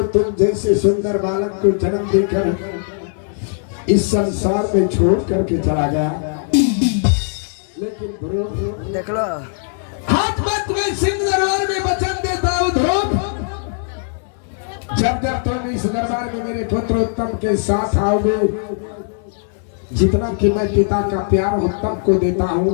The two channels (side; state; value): right; silent; 67 dB below the other